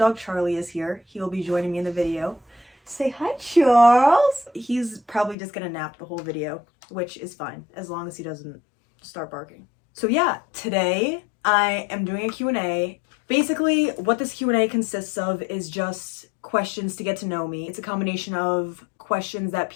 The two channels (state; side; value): drops out; right; at 5.4 s